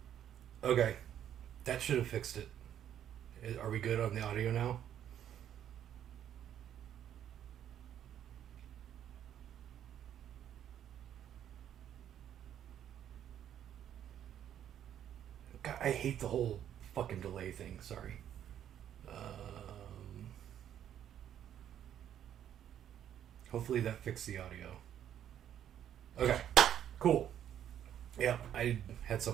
Okay. That should have fixed it. Are we good on the audio now? God, I hate the whole fucking delay thing. Sorry. Hopefully that fixed the audio. Okay. Cool. Yeah, I had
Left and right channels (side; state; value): left; quieter; 10.2 dB